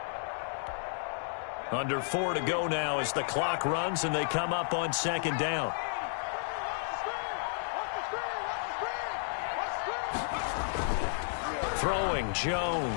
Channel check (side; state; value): right; silent; digital silence